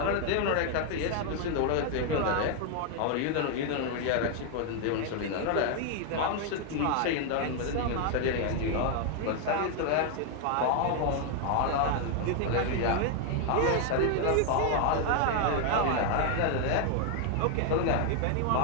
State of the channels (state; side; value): different; both; correlation 0.00